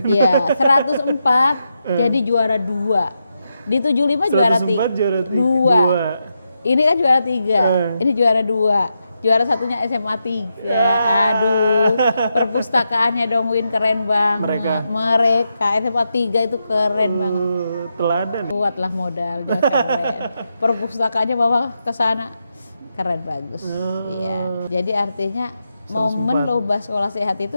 Iya, 104 jadi juara 2. Di 75 juara 3. Ini kan juara 3. Ini juara 2. Juara satunya SMA 3. Aduh, perpustakaannya dong Win keren banget. Mereka SMA 3 itu keren banget. Teladan. Buatlah modal dia keren. Perpustakaannya bawa ke sana keren bagus. Iya. Jadi artinya momen lomba sekolah sehat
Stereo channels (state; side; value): inverted; both; correlation -0.86